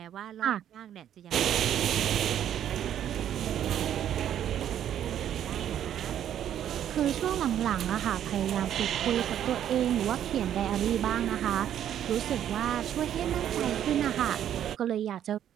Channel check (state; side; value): quieter; left; 10.4 dB